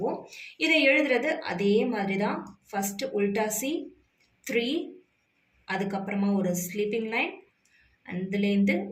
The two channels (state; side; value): identical; both; correlation 1.00